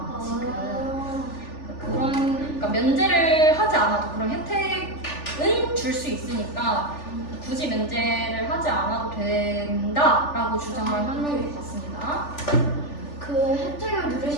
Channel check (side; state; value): right; late; 3.4 ms